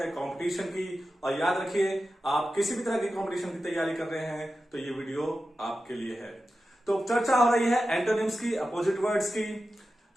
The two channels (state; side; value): normal; both; correlation 0.92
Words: कंपटीशन की, और याद रखिए आप किसी भी तरह की कंपटीशन की तैयारी कर रहे हैं तो ये वीडियो आपके लिए है। तो चर्चा हो रही है एंटोनिम्स की, अपोजिट वर्ड्स की।